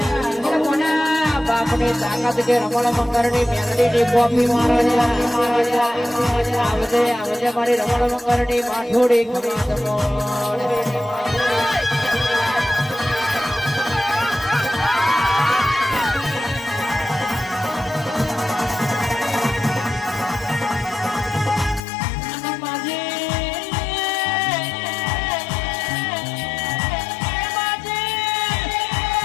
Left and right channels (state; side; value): drops out; right; at 21.8 s